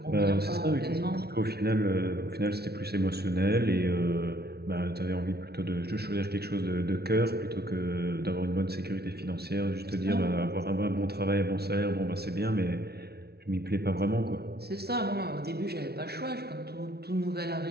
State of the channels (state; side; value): late; left; 0.46 ms